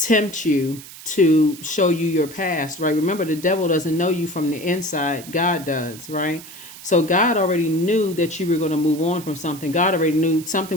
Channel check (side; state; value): right; noise; hiss, 16 dB below the sound